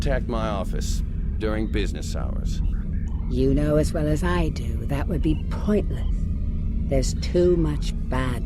my office during business hours. You know as well as I do that would be pointless. There's too much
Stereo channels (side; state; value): both; identical; correlation 1.00